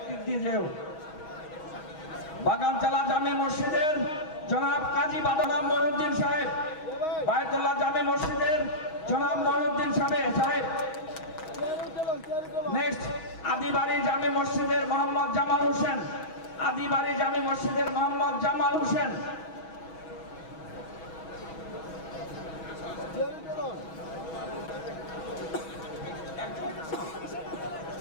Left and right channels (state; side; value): late; right; 6.4 ms